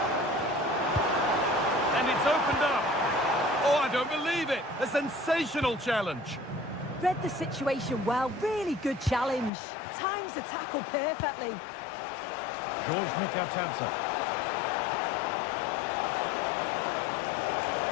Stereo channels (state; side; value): drops out; right; at 9.5 s